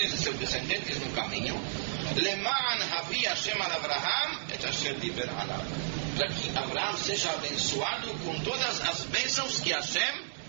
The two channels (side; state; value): left; silent; digital silence